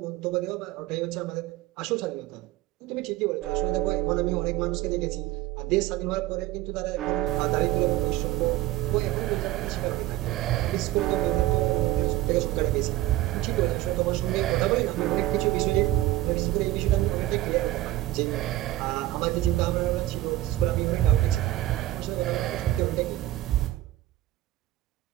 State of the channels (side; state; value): left; quieter; 15.8 dB